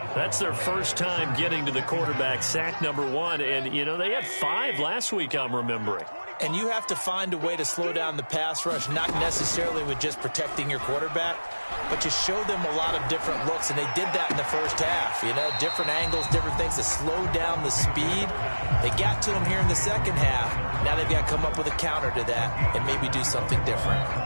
That's their first time getting to the quarterback, sack number 1. And, you know, they had 5 last week, I'm remembering. And you have to find a way to slow down the pass rush, not necessarily with just protecting your quarterback, but just show them a lot of different looks, and they did that in the first half. You know, different angles, different things to slow down the speed. They got to him here in the second half. Now they've got to come up with a counter to that and maybe do something different.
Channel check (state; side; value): inverted; both; correlation -1.00